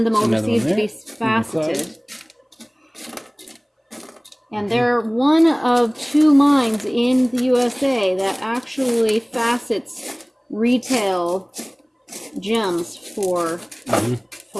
them overseas to be faceted. And they're one of 2 mines in the USA that actually facets retail gems for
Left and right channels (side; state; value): both; identical; correlation 1.00